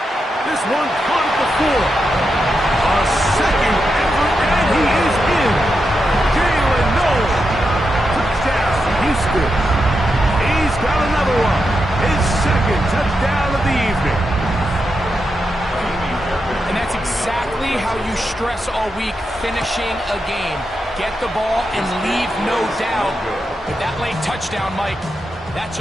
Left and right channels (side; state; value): both; normal; correlation 0.86